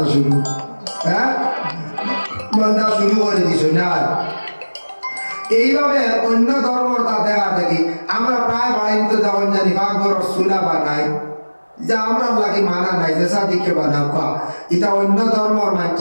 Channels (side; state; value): both; inverted; correlation -1.00